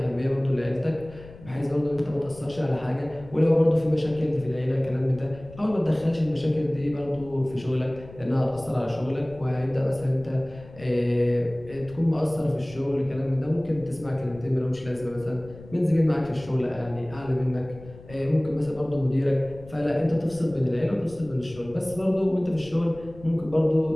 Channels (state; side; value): noise; left; rumble, 18 dB below the sound